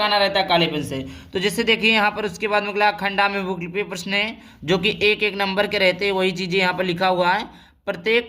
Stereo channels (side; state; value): both; identical; correlation 1.00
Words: रहता है काले पेन से। तो जैसे देखिए यहाँ पर उसके बाद में खंडा में बहुविकल्पीय प्रश्न है, जो कि एक एक नंबर के रहते हैं, वही चीजें यहाँ पर लिखा हुआ है।